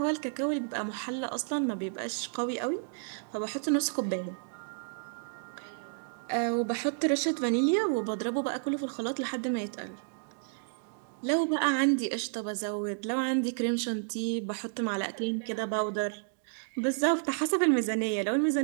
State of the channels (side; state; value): left; silent; digital silence